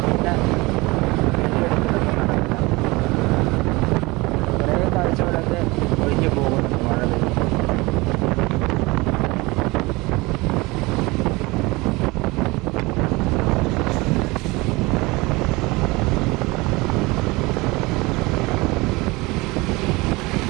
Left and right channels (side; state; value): left; quieter; 23.3 dB